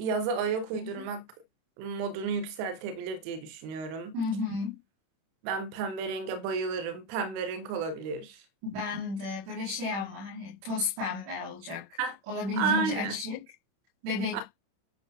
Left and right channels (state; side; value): late; left; 31 ms